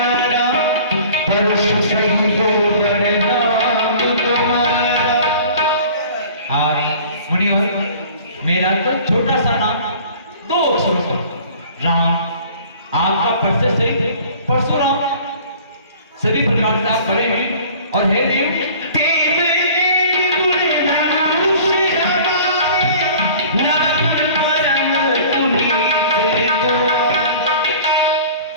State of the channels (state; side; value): inverted; both; correlation -0.47